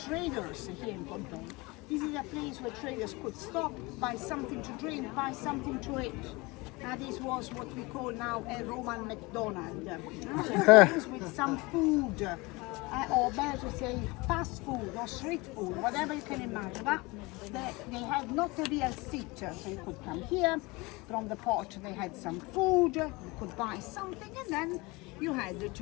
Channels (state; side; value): quieter; right; 24.3 dB